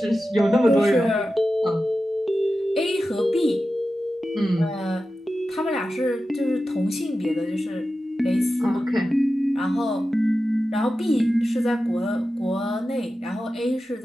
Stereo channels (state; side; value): normal; both; correlation 0.93